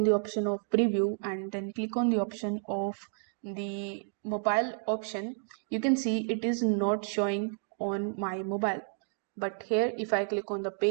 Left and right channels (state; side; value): silent; left; 57 dB below the other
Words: the option of preview and then click on the option of the mobile option, you can see it is not showing on my mobile. But here if I click on the